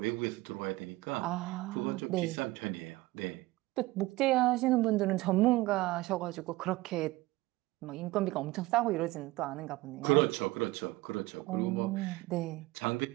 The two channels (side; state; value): left; quieter; 19.8 dB